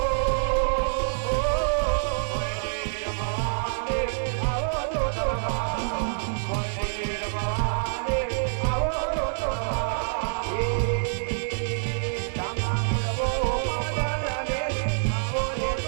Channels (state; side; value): silent; left; digital silence